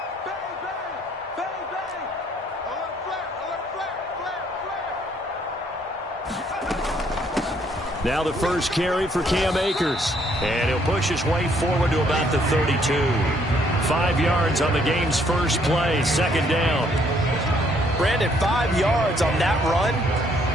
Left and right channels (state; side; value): normal; both; correlation 0.67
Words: Now the first carry for Cam Akers. And he'll push his way forward to about the 32. 5 yards on the game's first play, second down. Brandon, 5 yards on that run.